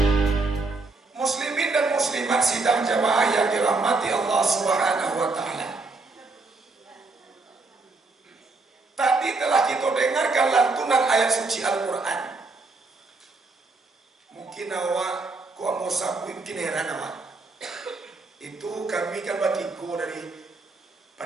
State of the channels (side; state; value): left; quieter; 3.6 dB